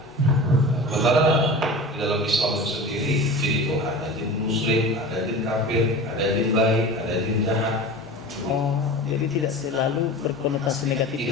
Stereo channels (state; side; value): normal; both; correlation 0.34